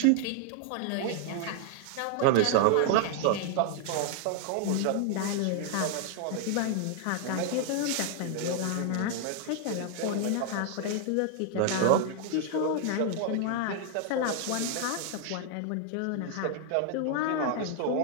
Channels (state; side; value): different; both; correlation 0.00